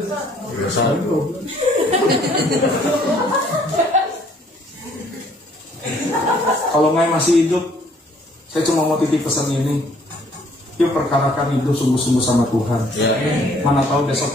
Kalau Ngai masih hidup, saya cuma mau titip pesan ini. Yuk perkarakan hidup sungguh-sungguh sama Tuhan. Mana tahu besok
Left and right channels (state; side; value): normal; both; correlation 0.62